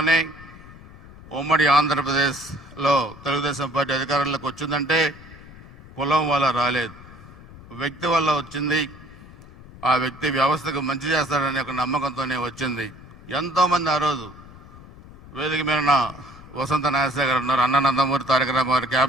ఉమ్మడి ఆంధ్రప్రదేశ్లో తెలుగుదేశం పార్టీ అధికారంలోకి వచ్చిందంటే కులం వల్ల రాలేదు, వ్యక్తి వల్ల వచ్చింది. ఆ వ్యక్తి వ్యవస్థకు మంచి చేస్తాడనే ఒక నమ్మకంతోనే వచ్చింది. ఎంతోమంది ఆ రోజు వేదిక మీద వసంత నాగేశ్వర గారు ఉన్నారు, అన్న నందమూరి తారక రామారావు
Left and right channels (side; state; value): left; noise; rumble, 19 dB below the sound